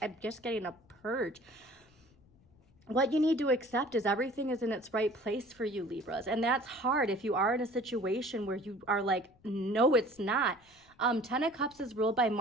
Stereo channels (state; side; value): noise; left; rumble, 30 dB below the sound